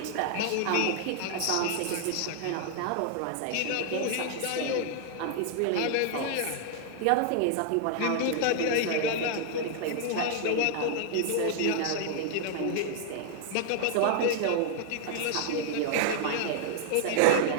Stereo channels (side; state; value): both; different; correlation 0.00